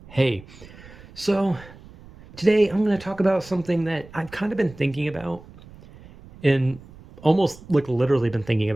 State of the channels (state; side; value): noise; right; rumble, 20 dB below the sound